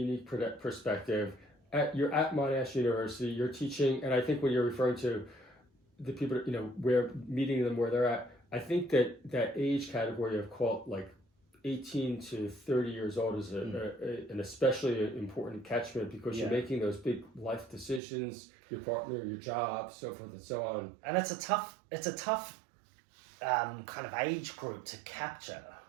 perspective. You're at Monash University, you're teaching, and I think when you're referring to the people, where meeting them where they're at, I think that age category of 18 to 30 years old is an especially important catchment, because you're making those big life decisions, your partner, your job, so forth and so on. And it's a tough kind of age group to capture,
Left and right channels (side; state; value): left; drops out; at 18.0 s